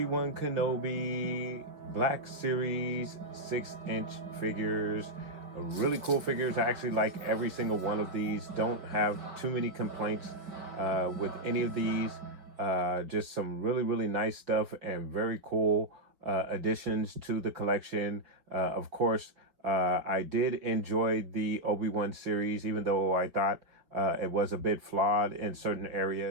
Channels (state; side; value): late; left; 5.1 ms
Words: Wan Kenobi Black Series 6-inch figures. Really cool figures. I actually like every single one of these. Don't have too many complaints with any of these. Just some really nice stuff and very cool additions to the collection. Of course, I did enjoy the Obi Wan series, even though I thought it was a bit flawed in certain